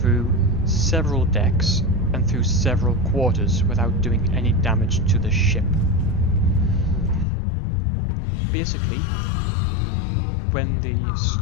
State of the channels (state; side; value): drops out; right; at 7.2 s